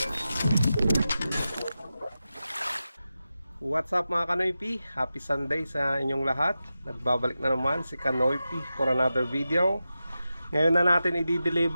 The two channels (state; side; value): inverted; both; correlation -0.92